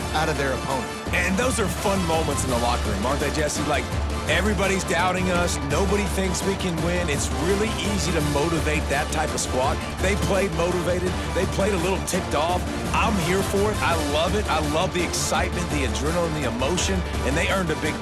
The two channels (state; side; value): identical; both; correlation 1.00